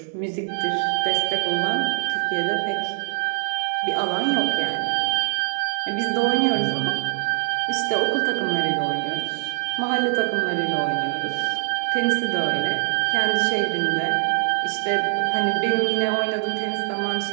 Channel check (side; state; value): left; silent; 63 dB below the other